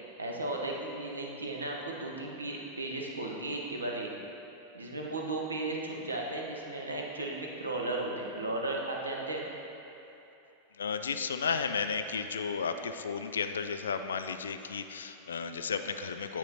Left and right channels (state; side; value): inverted; both; correlation -0.44